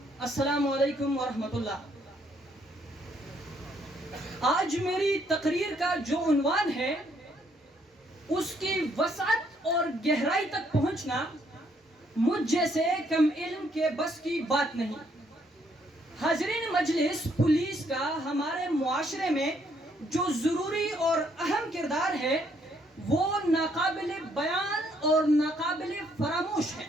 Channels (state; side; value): normal; both; correlation 0.70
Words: السلام علیکم ورحمۃ اللہ۔ آج میری تقریر کا جو عنوان ہے اس کی وسعت اور گہرائی تک پہنچنا مجھ جیسے کم علم کے بس کی بات نہیں۔ حاضرین مجلس، پولیس کا ہمارے معاشرے میں جو ضروری اور اہم کردار ہے وہ ناقابل بیان اور ناقابل فراموش ہے۔